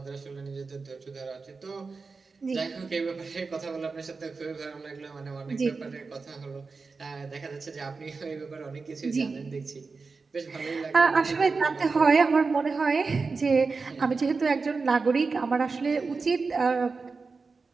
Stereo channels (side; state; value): left; quieter; 4.4 dB